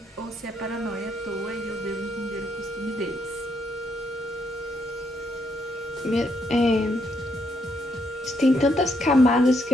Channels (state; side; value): normal; both; correlation 0.76